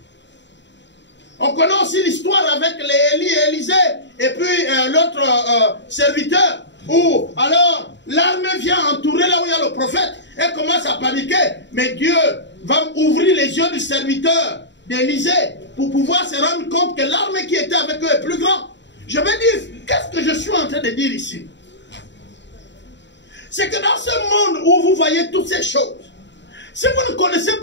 On connaît aussi l'histoire avec les Élie et Élisée. Et puis l'autre serviteur. Où alors l'armée vient entourer là où il y a le prophète. Elle commence à paniquer. Mais Dieu va ouvrir les yeux du serviteur d'Élisée pour pouvoir se rendre compte que l'armée qui était avec eux est plus grande. Je vais dire, qu'est-ce que je suis en train de dire ici? C'est que dans ce monde où vous voyez toutes ces choses, si vous ne connaissez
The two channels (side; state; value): right; late; 0.52 ms